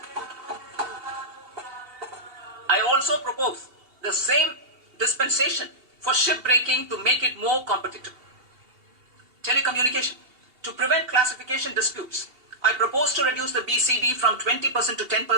propose the same dispensation for shipbreaking to make it more competitive. Telecommunication. To prevent classification disputes, I propose to reduce the BCD from 20% to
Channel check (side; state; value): left; late; 2.7 ms